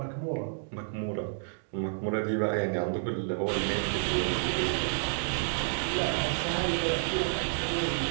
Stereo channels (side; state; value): left; silent; digital silence